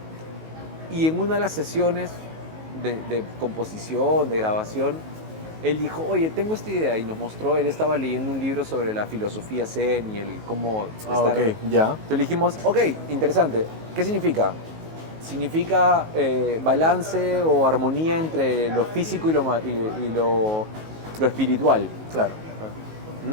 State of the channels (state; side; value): late; left; 19 ms